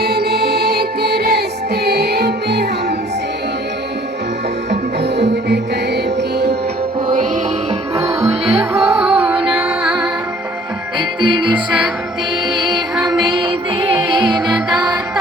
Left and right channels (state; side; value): normal; both; correlation 0.55